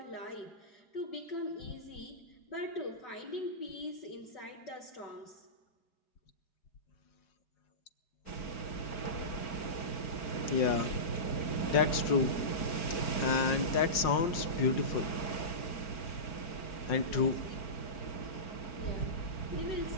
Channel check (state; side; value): late; right; 5.6 ms